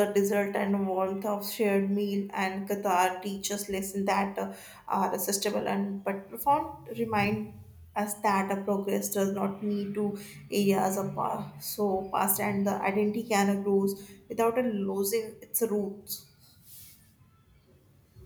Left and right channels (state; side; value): identical; both; correlation 1.00